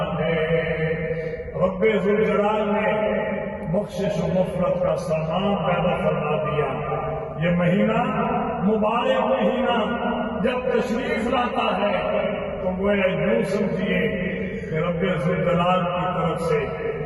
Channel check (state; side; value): identical; both; correlation 1.00